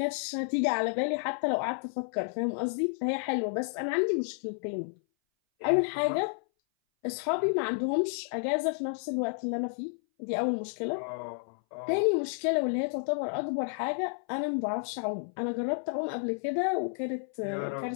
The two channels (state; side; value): silent; right; 57 dB below the other